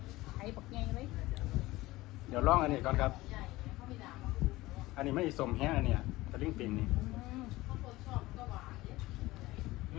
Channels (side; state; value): right; quieter; 18.8 dB